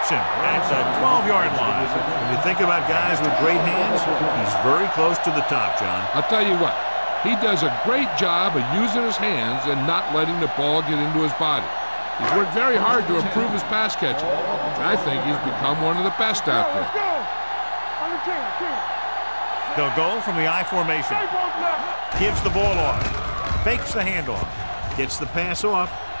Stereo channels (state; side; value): inverted; both; correlation -1.00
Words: him at the 12-yard line. When you think about guys with great hands, he's very close to the top, John. I'll tell you what, he does a great job of using his hands and not letting the ball get into his body. He's worked very hard to improve his pass catching, and I think he's become one of the best out there. They'll go from the I formation. Gives the ball off. Fakes the handoff. Gets the pass off.